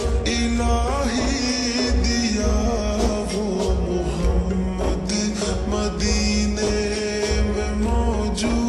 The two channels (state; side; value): identical; both; correlation 1.00